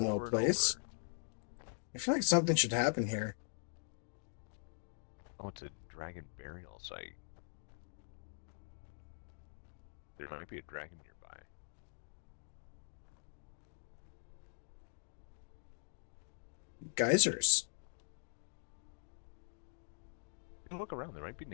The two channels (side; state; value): right; silent; digital silence